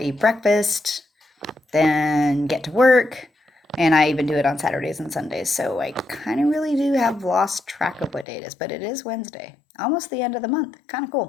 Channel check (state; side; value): drops out; right; at 8.2 s